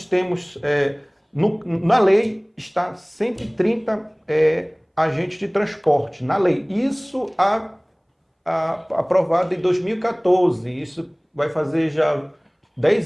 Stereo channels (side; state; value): both; identical; correlation 1.00